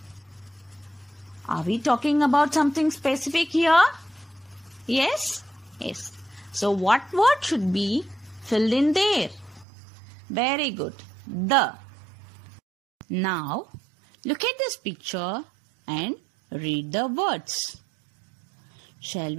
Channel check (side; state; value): left; drops out; at 9.7 s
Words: Are we talking about something specific here? Yes? Yes. So, what word should be filled in there? Very good. The. Now, look at this picture and read the words. Shall